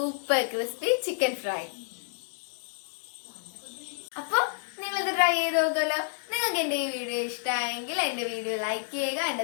ക്രിസ്പി ചിക്കൻ ഫ്രൈ. അപ്പൊ നിങ്ങളിത് ട്രൈ ചെയ്ത് നോക്കുമല്ലോ. നിങ്ങൾക്ക് എൻ്റെ ഈ വീഡിയോ ഇഷ്ടമായെങ്കിൽ എൻ്റെ വീഡിയോ ലൈക്ക് ചെയ്യുക. എൻ്റെ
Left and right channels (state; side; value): silent; right; digital silence